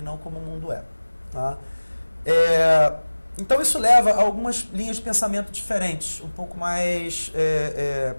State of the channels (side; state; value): both; inverted; correlation -1.00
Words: não como o mundo é. Tá? Então isso leva a algumas linhas de pensamento diferentes, um pouco mais...